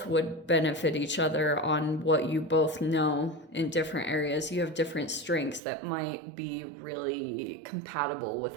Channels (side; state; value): left; drops out; at 5.6 s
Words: would benefit each other on what you both know in different areas. You have different strengths that might be really compatible